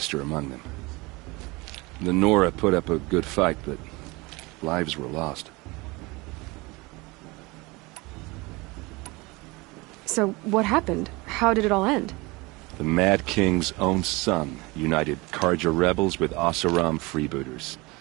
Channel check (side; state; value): left; quieter; 24.2 dB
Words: among them. The Nora put up a good fight, but lives were lost. So, what happened? How did it all end? The Mad King's own son united Carja rebels with Oseram freebooters.